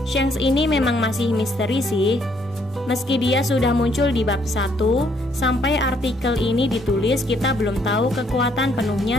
Shanks ini memang masih misteri sih. Meski dia sudah muncul di bab 1, sampai artikel ini ditulis kita belum tahu kekuatan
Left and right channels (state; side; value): normal; both; correlation 0.68